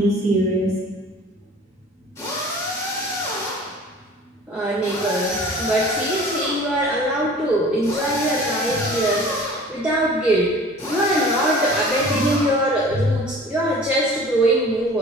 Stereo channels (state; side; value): normal; both; correlation 0.45